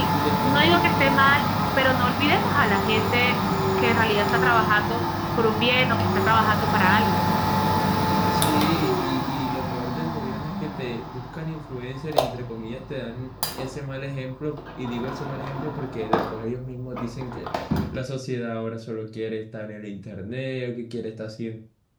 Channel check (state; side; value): identical; both; correlation 1.00